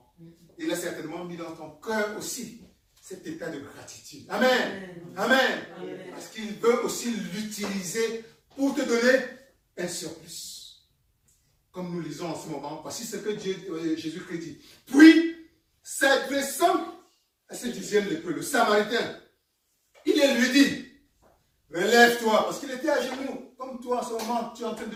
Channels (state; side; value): identical; both; correlation 1.00